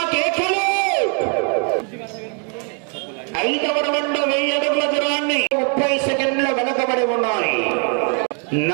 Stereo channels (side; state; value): left; quieter; 38.7 dB